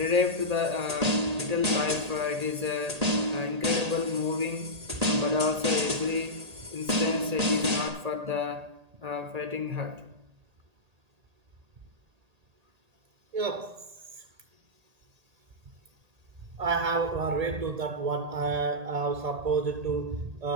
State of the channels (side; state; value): left; late; 1.8 ms